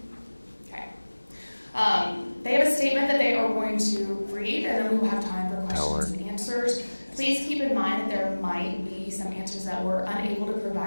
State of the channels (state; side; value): inverted; both; correlation -1.00